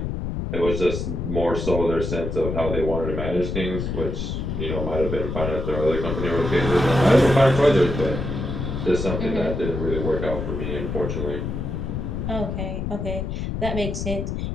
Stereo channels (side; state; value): left; noise; rumble, 3 dB below the sound